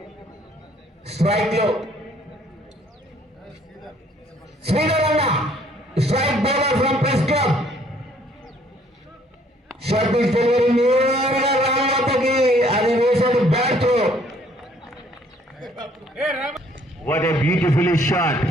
స్ట్రైక్ లో శ్రీధర్ అన్న strike bowler from press club. Shot delivery నేరుగా రామలతకి అది వేసాడు బ్యాట్ తో. What a beautiful shot.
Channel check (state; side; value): normal; both; correlation 0.62